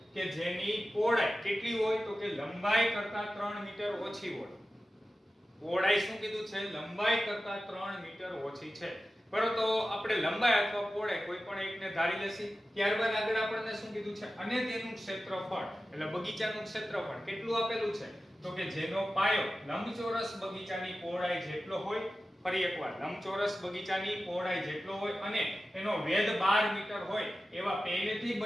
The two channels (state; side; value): normal; both; correlation 0.94